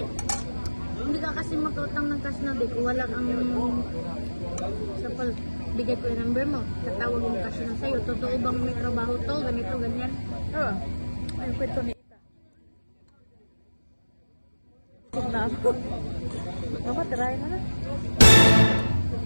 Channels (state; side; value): inverted; both; correlation -1.00